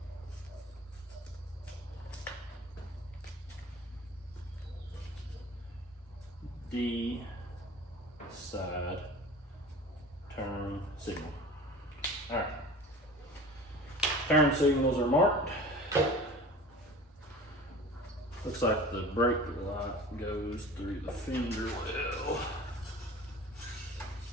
D side turn signal. All right. Turn signals are marked. Looks like the brake light goes through the fender well.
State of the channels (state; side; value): normal; both; correlation 0.39